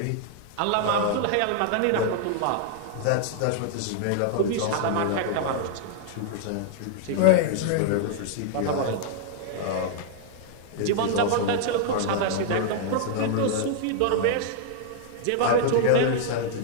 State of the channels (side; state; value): both; different; correlation -0.01